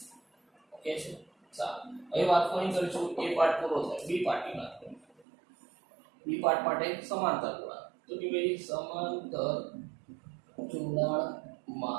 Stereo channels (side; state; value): left; drops out; at 5.2 s